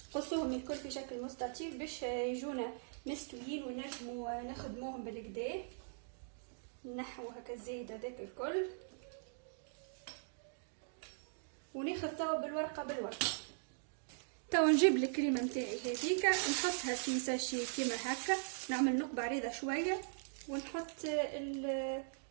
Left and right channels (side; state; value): left; silent; digital silence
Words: قصوهم الكل في شكل مستطيل باش يجونا مستويين ونجموا نخدموهم بالكدا. نحو هكا الزايد هذاك الكل وناخذ توا بالورقه. توا نجيب الكريمه نتاعي هذيك نحطها في ساشي كيما هكا، نعمل نقبه عريضه شويه ونحط